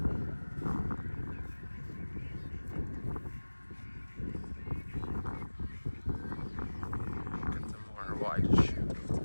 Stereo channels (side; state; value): both; inverted; correlation -1.00